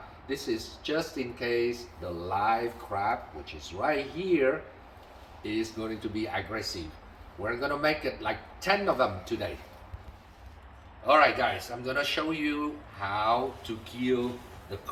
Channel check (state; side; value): identical; both; correlation 1.00